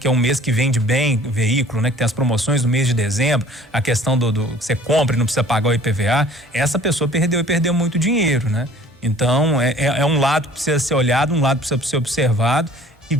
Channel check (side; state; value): both; normal; correlation 0.51